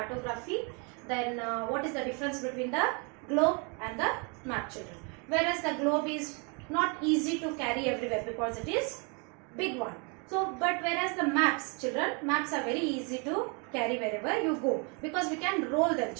then what is the difference between the globe and the map, children. Whereas the globe is not easy to carry everywhere because it is big one. So, but whereas the maps, children, maps are very easy to carry wherever you go because we can roll them,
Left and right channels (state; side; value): quieter; left; 33.8 dB